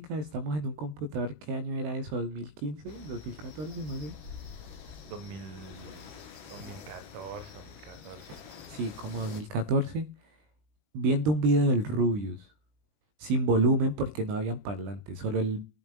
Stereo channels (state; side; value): late; left; 19 ms